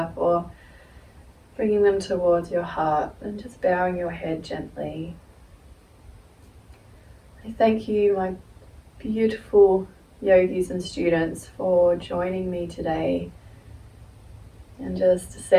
or bringing them towards your heart and just bowing your head gently. I thank you, my beautiful yogis and students, for joining me today and just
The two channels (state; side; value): identical; both; correlation 1.00